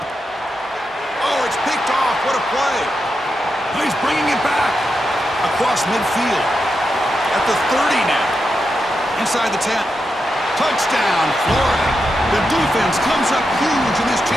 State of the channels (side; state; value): both; normal; correlation 0.87